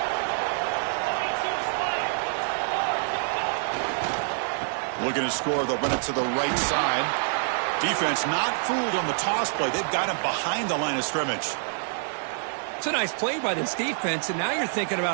Looking to score, they'll run it to the right side. Defense not fooled on the toss play. They've got him behind the line of scrimmage. It's a nice play by this defense, and now you're thinking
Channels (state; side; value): silent; left; digital silence